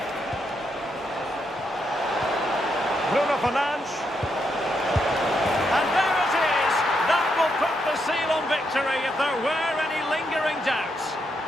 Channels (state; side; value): normal; both; correlation 0.80